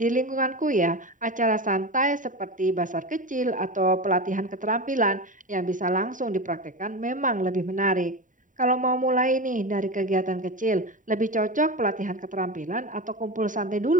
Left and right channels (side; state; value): left; late; 0.38 ms